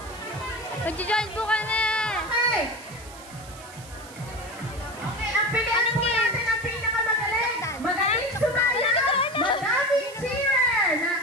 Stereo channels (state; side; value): noise; right; hiss, 19 dB below the sound